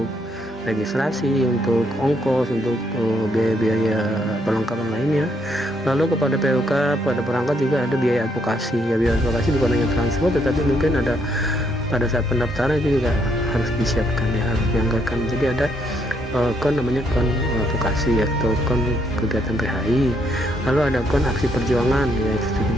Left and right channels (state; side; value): normal; both; correlation 0.73